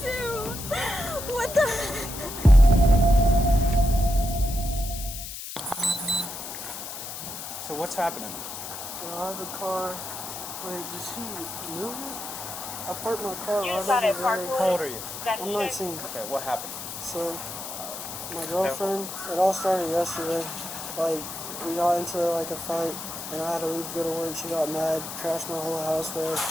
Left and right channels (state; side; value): noise; left; hiss, 8 dB below the sound